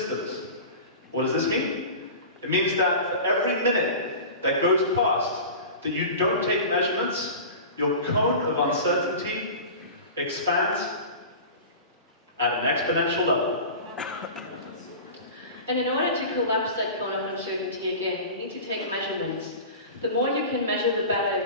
What does this mean? It means that for every minute that goes past that you don't take measurements, your cone of uncertainty expands at an exponential level. And in order to collapse that cone of uncertainty again, you need to take measurements. The more you can measure, the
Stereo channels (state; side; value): inverted; both; correlation -0.34